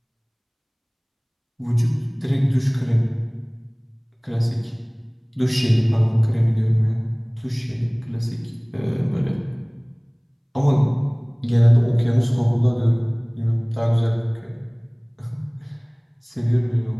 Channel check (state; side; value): identical; both; correlation 1.00